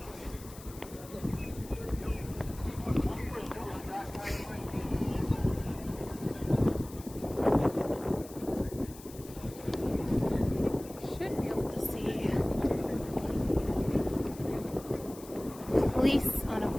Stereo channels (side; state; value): left; noise; hiss, 18 dB below the sound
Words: Should be able to see police on a